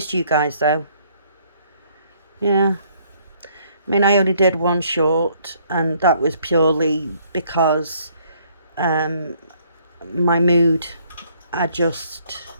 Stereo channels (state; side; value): inverted; both; correlation -0.65